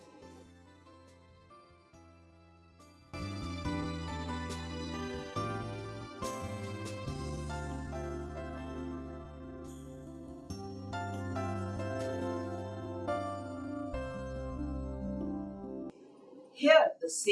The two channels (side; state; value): both; identical; correlation 1.00